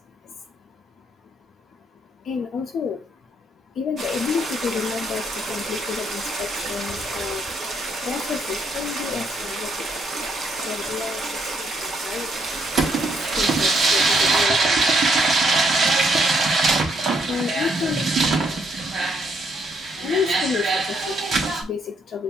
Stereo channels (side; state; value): both; normal; correlation 0.72